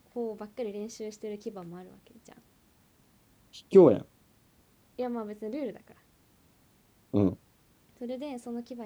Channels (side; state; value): both; identical; correlation 1.00